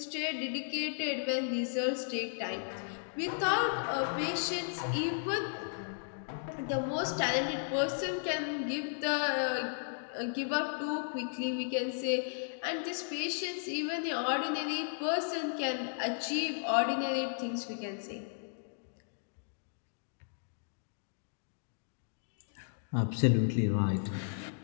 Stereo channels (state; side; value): silent; right; digital silence